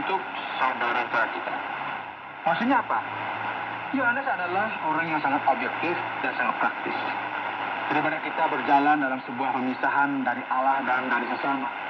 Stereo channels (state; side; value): identical; both; correlation 1.00